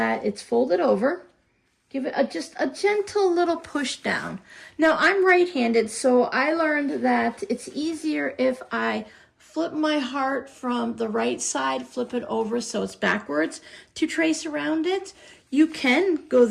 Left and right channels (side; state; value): both; identical; correlation 1.00